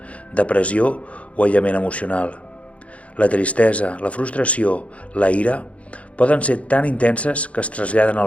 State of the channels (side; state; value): right; late; 0.064 ms